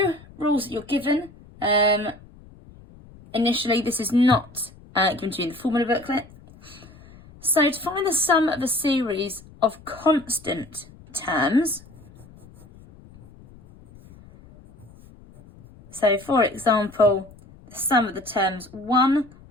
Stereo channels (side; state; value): left; noise; rumble, 23 dB below the sound